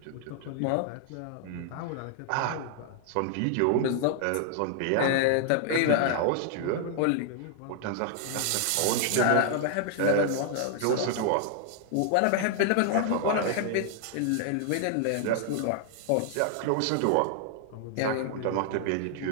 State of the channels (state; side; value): different; both; correlation 0.00